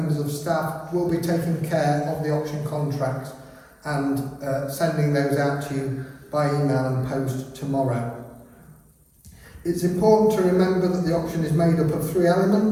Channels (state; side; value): identical; both; correlation 1.00